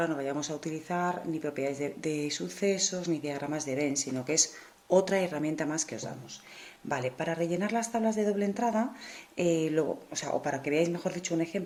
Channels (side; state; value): both; identical; correlation 1.00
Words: no vayamos a utilizar ni propiedades de sucesos ni diagramas de Venn, sino que es otra herramienta más que os damos. Vale, para rellenar las tablas de doble entrada, o para que veáis, mejor dicho, un